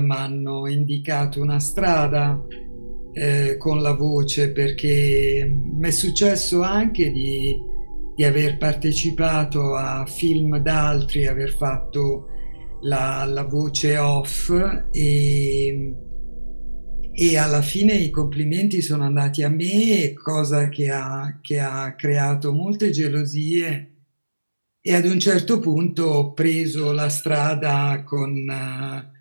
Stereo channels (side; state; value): both; inverted; correlation -1.00